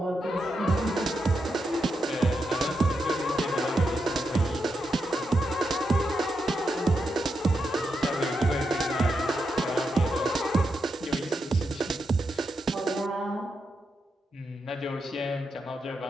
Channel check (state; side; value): normal; both; correlation 0.85